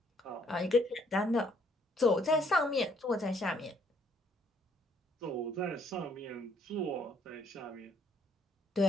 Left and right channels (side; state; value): both; normal; correlation 0.66